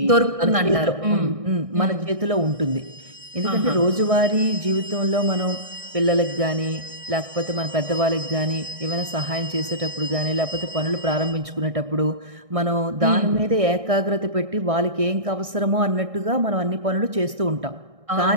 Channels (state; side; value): late; left; 1.6 ms